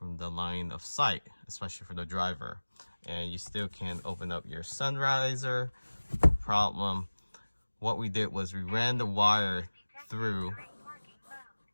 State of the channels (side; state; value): both; inverted; correlation -1.00